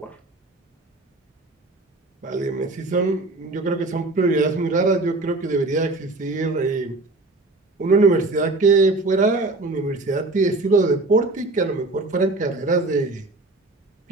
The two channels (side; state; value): left; quieter; 3.1 dB